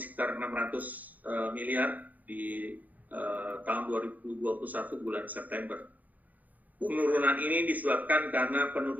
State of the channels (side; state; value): left; late; 0.080 ms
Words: 600 miliar di tahun 2021 bulan September. Penurunan ini disebabkan karena